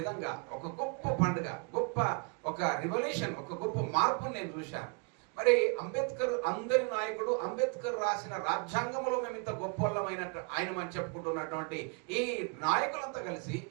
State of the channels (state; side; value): quieter; left; 34.9 dB